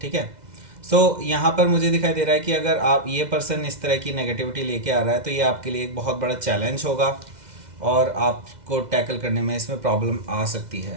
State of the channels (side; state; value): left; late; 2.0 ms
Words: है। सो यहाँ पर मुझे दिखाई दे रहा है कि अगर आप ये पर्सन इस तरह की नेगेटिविटी लेके आ रहा है, तो ये आपके लिए एक बहुत बड़ा चैलेंज होगा, और आपको टैकल करने में इसमें प्रॉब्लम आ सकती